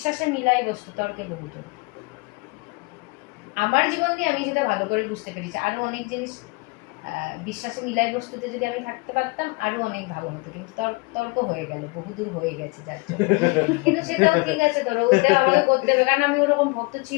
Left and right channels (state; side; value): quieter; right; 27.0 dB